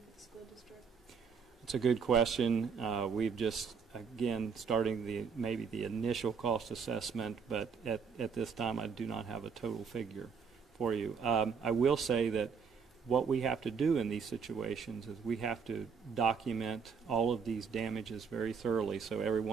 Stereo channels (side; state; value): left; quieter; 6.0 dB